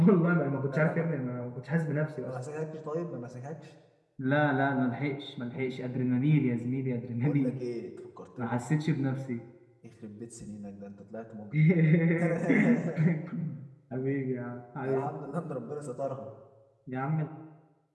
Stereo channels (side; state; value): both; identical; correlation 1.00